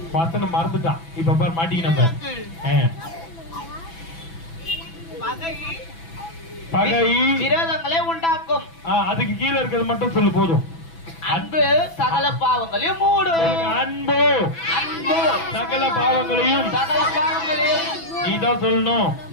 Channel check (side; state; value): right; late; 6.0 ms